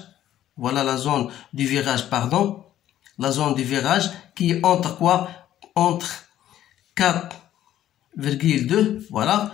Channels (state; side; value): quieter; right; 12.2 dB